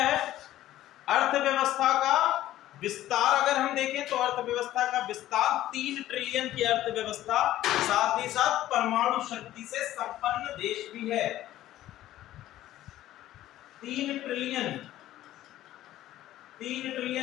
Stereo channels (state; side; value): quieter; right; 14.0 dB